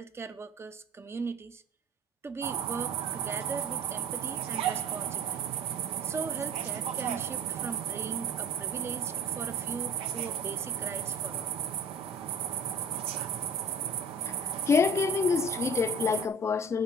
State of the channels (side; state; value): both; normal; correlation 0.43